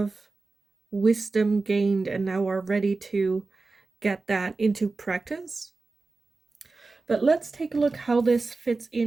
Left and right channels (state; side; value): quieter; left; 3.8 dB